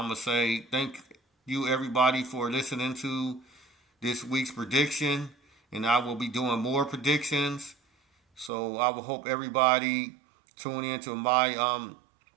going to say thank you, everybody, for listening to this week's prediction, and I will be doing more predictions. So I will hope everybody tune in to my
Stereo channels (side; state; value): left; drops out; at 8.5 s